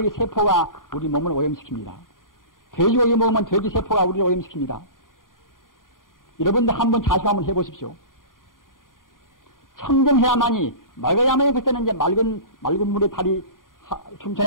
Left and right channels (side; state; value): right; late; 0.90 ms